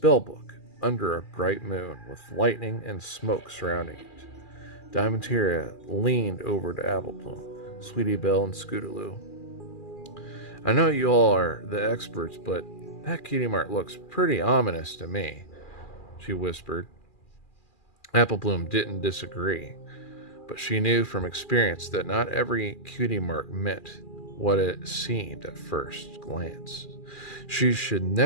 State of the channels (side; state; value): right; late; 2.4 ms